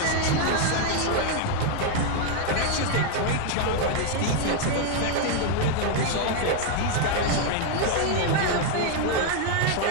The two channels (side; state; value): both; different; correlation 0.00